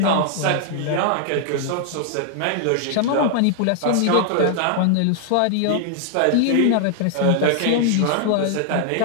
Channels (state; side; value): different; both; correlation 0.00